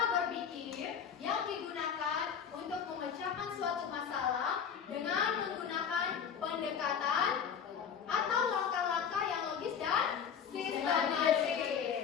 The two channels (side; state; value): right; quieter; 7.5 dB